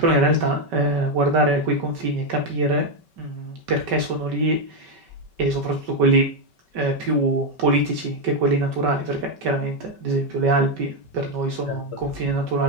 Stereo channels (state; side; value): late; left; 5.2 ms